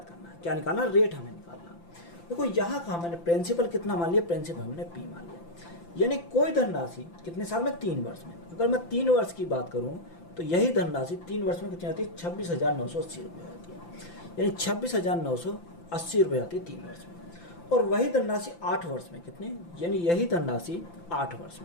करना है। क्या निकालना, रेट हमें निकालना। देखो यहाँ का मैंने प्रिंसिपल कितना मान लिया, प्रिंसिपल हमने P मान लिया, यानी कोई धनराशि कितने साल में, 3 वर्ष में। अगर मैं 3 वर्ष की बात करूँ तो यही धनराशि 3 वर्ष में कितनी आती है, 26,980 रुपये आती है, यानी 26,980 रुपये आती है 3 वर्ष में। और वही धनराशि 8 वर्ष में कितने, यानी यही धनराशि 8 वर्ष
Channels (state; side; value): late; right; 5.9 ms